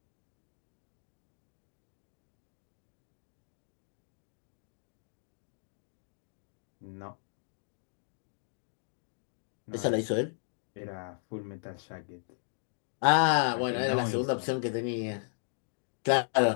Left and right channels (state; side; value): silent; right; digital silence